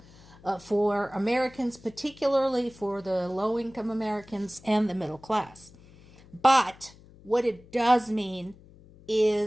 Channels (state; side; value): noise; left; hum, 23 dB below the sound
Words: for Americans, particularly for the low-income Americans and the middle class. But what it does mean